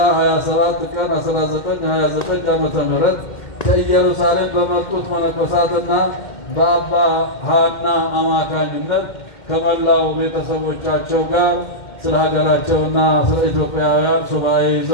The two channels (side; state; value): right; late; 2.1 ms